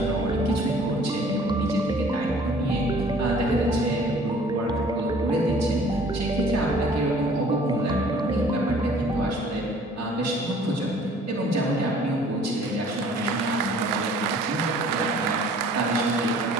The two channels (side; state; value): both; normal; correlation 0.53